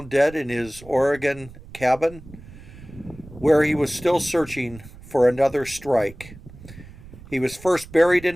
dead in his Oregon cabin, where he was still searching for another strike. He was first buried in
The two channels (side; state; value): right; noise; rumble, 18 dB below the sound